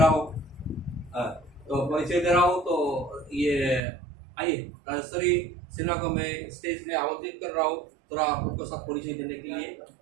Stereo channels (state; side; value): drops out; left; at 3.8 s